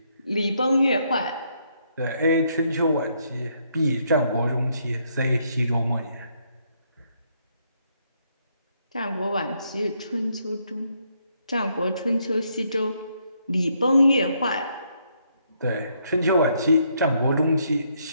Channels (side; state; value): both; inverted; correlation -0.73